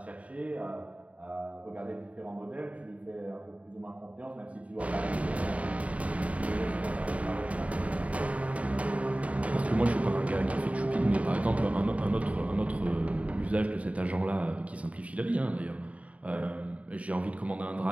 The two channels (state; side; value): late; left; 0.067 ms